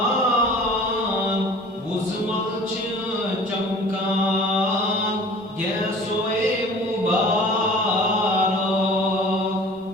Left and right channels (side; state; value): both; normal; correlation 0.45